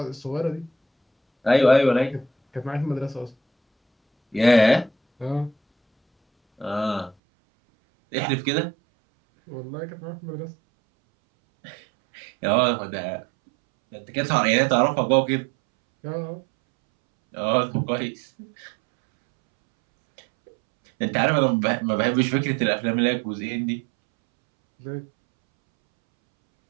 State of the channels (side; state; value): left; drops out; at 7.2 s